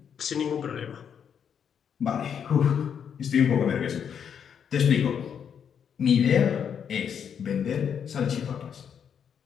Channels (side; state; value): right; quieter; 7.8 dB